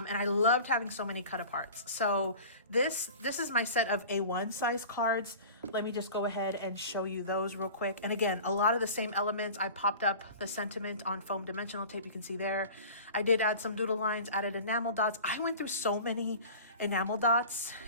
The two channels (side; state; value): both; inverted; correlation -0.39